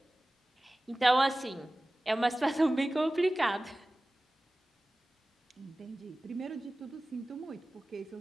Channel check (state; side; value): normal; both; correlation 0.97